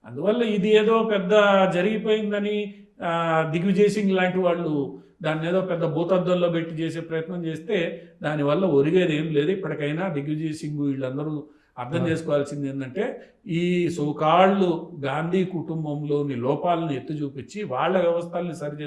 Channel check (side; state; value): both; identical; correlation 1.00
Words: అందువల్ల ఇది ఏదో పెద్ద జరిగిపోయిందని దిగ్విజయ్ సింగ్ లాంటి వాళ్ళు దాన్ని ఏదో పెద్ద భూతద్దంలో పెట్టి చేసే ప్రయత్నం చేస్తే దానివల్ల ఒరిగేది ఏం లేదు. ఇప్పటికైనా దిగ్విజయ్ సింగ్ వీళ్ళందరూ అర్థం చేసుకోవాల్సింది ఏంటంటే ఈ సోకాళ్ళు గాంధీ కుటుంబంలోని లోపాలను ఎత్తి చూపించి వాళ్ళ వ్యవస్థల్ని సరి